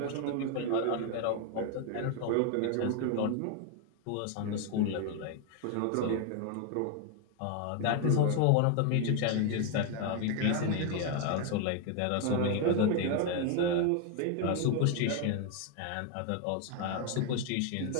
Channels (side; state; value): both; different; correlation 0.01